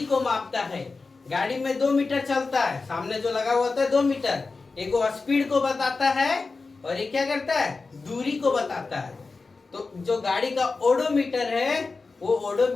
को मापता है। गाड़ी में 2 मीटर चलता है, सामने जो लगा हुआ है 2 मीटर, एक स्पीड को बताता है और ये क्या करता है, दूरी को बताता है। तो जो गाड़ी का ओडोमीटर है वो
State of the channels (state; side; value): quieter; right; 4.1 dB